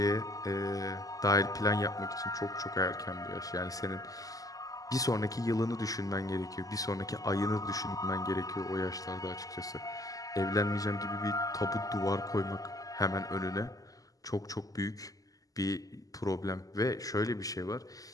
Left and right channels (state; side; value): late; right; 0.17 ms